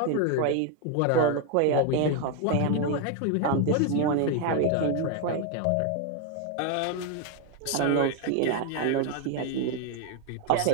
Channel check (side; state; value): both; different; correlation 0.00